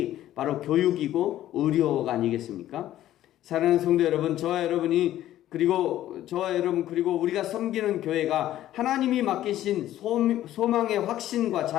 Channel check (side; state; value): right; quieter; 13.2 dB